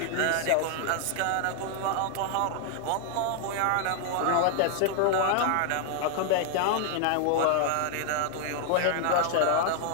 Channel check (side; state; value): both; different; correlation 0.00